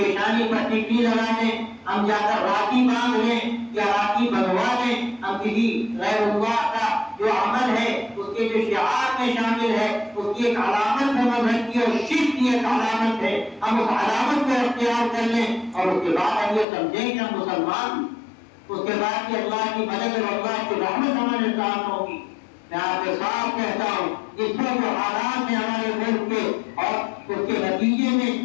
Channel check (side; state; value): right; drops out; at 16.7 s